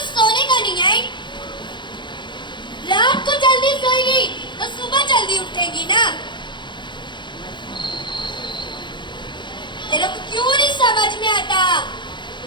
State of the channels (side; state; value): right; late; 0.23 ms